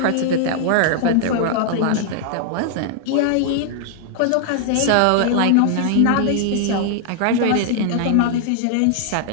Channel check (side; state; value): both; different; correlation 0.00